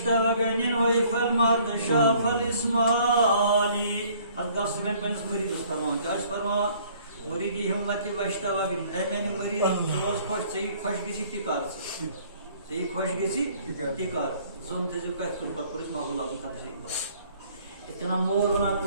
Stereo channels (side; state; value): both; inverted; correlation -0.58